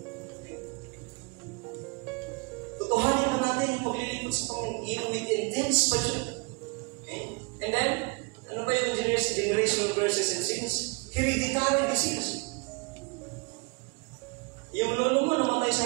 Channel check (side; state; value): left; quieter; 30.2 dB